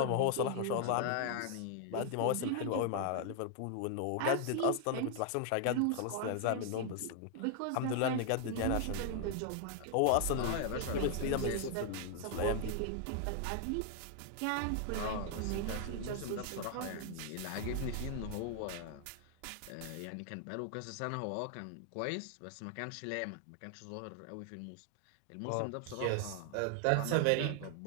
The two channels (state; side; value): different; both; correlation 0.00